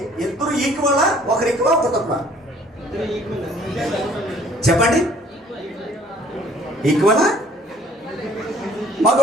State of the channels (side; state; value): both; normal; correlation 0.57